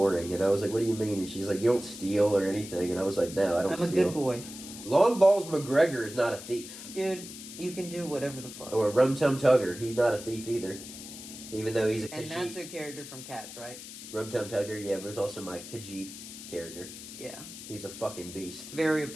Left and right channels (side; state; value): left; noise; hiss, 13 dB below the sound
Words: And I was like, what do you mean? And she's like, you don't steal or anything. And I was like, no, I don't steal. I'm a good boy. Long Balls McGregor is not a thief. Dude, you can do whatever the fuck. Or Rum Tum Tugger, he's not a thief either. Even though he's a Khajiit. And that's a character from Cats, right? Rum Tum Tugger, yeah, but it's also my Khajiit character. Yeah. He's a fucking beast. Very